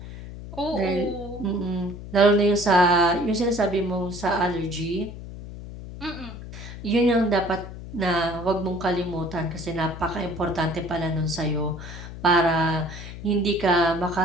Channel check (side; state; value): left; noise; hum, 12 dB below the sound